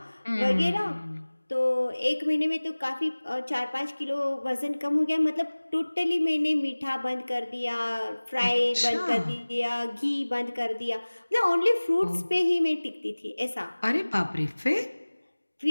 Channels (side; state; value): both; inverted; correlation -1.00